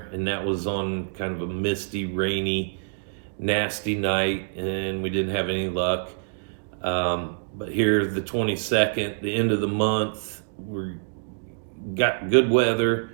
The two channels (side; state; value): left; silent; digital silence